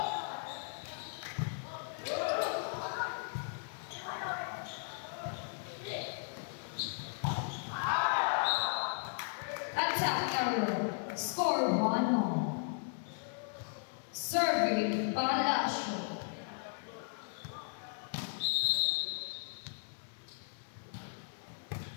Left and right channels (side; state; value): right; silent; 54 dB below the other